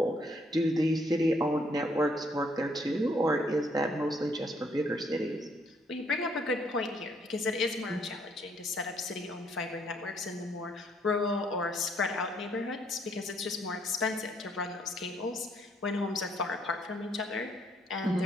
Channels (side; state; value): both; normal; correlation 0.68